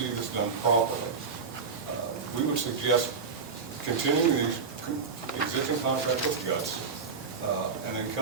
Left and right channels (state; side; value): quieter; left; 5.3 dB